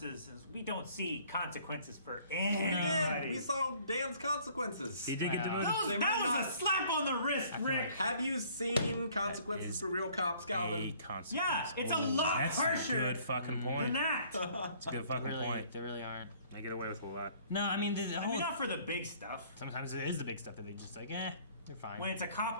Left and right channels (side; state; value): both; inverted; correlation -0.57